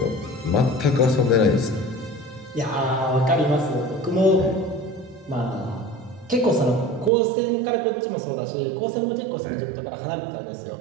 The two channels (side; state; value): left; drops out; at 7.1 s